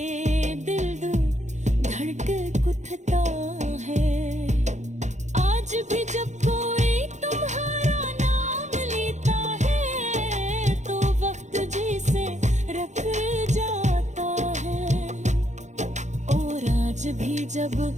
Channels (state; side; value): late; left; 0.34 ms